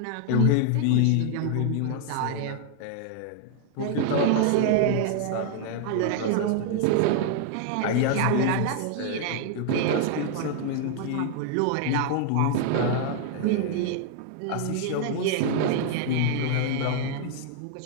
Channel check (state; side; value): different; both; correlation 0.00